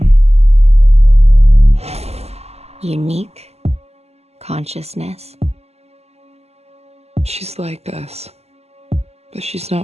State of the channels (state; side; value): late; left; 0.30 ms